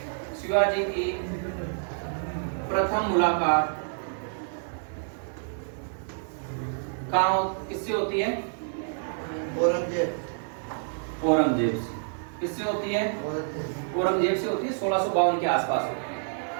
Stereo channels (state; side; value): silent; left; digital silence